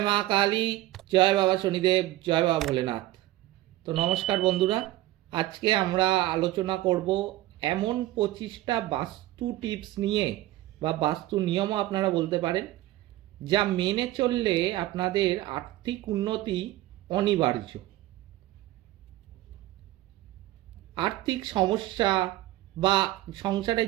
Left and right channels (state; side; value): quieter; left; 16.2 dB